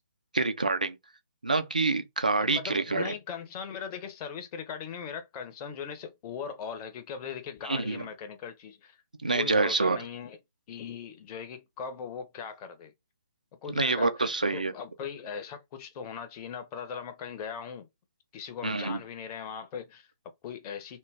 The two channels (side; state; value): both; inverted; correlation -0.48